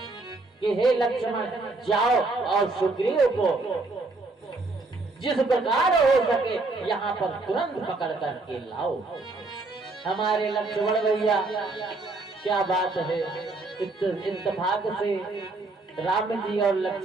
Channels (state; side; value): quieter; left; 3.4 dB